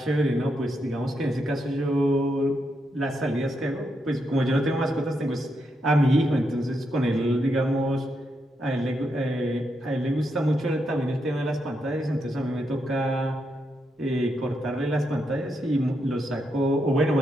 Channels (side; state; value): both; normal; correlation 0.82